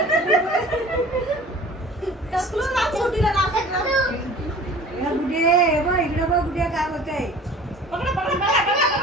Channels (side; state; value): both; normal; correlation 0.45